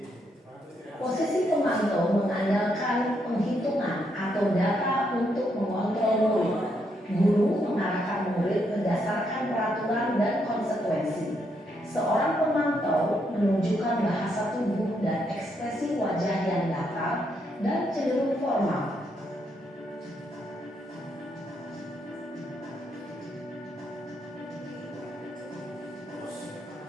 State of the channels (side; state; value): both; normal; correlation 0.77